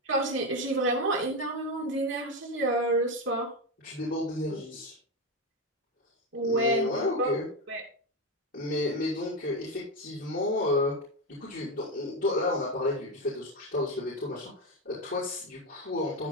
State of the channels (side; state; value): both; normal; correlation 0.12